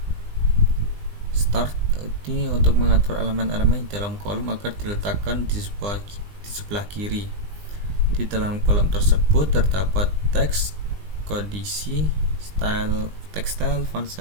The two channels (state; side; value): late; left; 20 ms